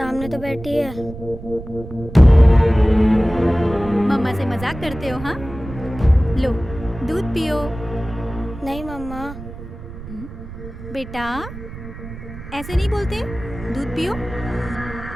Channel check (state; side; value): noise; right; rumble, 13 dB below the sound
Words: तो बैठी है। मम्मा से मजाक करते हो? हाँ, लो दूध पियो। नहीं मम्मा। बेटा ऐसे नहीं बोलते, दूध पियो।